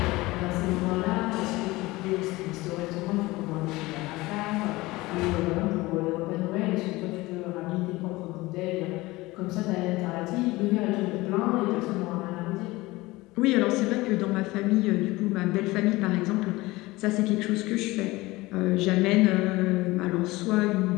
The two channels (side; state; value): right; quieter; 20.4 dB